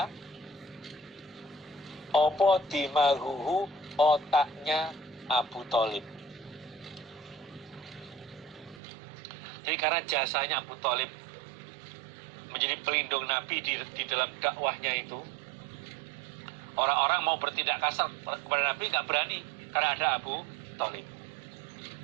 opo dimaguhu otaknya Abu Thalib. Jadi karena jasanya Abu Thalib menjadi pelindung Nabi di dalam dakwahnya itu, orang-orang mau bertindak kasar kepada Nabi nggak berani karena ada Abu Thalib.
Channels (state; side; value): drops out; left; at 8.8 s